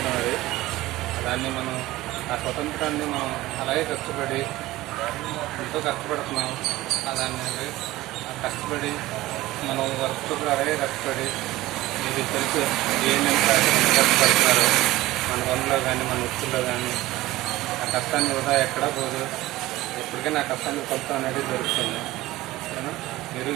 అది. దాన్ని మనం ఆ స్వతంత్రాన్ని మనం అలాగే కష్టపడి ఎంతో కష్టపడుతున్నాం. దాన్ని కష్టపడి మనం వర్క్ కూడా అలాగే కష్టపడి ఇది తెలుసు ఏమేమి కష్టపడుతున్నారు మన పనుల్లో కానీ మన వృత్తుల్లో కానీ. ఆ కష్టాన్ని కూడా ఎక్కడా పోదు. ఎప్పటికైనా ఆ కష్టాన్ని ఫలితం అనేది దొరుకుతుంది. మీరు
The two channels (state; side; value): quieter; left; 17.5 dB